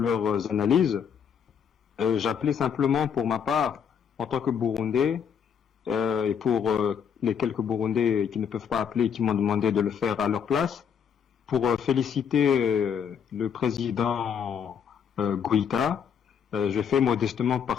analyses. J'appelais simplement pour ma part, en tant que Burundais, et pour les quelques Burundais qui ne peuvent pas appeler et qui m'ont demandé de le faire à leur place, pour féliciter le président Goïta. Je fais modestement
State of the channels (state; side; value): quieter; right; 7.5 dB